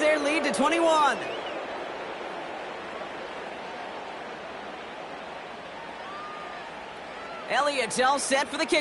lead to 21. Elliott's all set for the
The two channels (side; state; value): both; identical; correlation 1.00